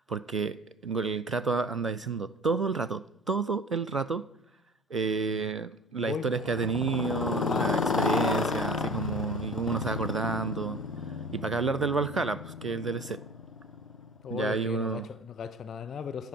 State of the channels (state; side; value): normal; both; correlation 0.42